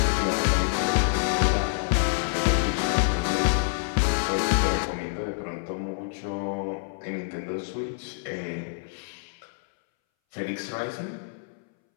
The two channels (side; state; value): right; silent; 60 dB below the other